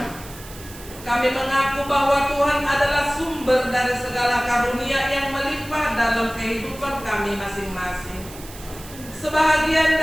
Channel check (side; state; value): right; noise; hiss, 17 dB below the sound